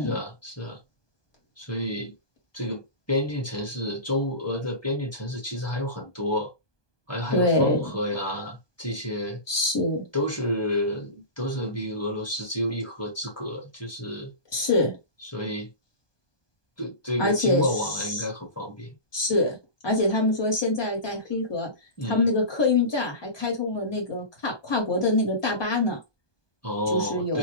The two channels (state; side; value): late; right; 1.2 ms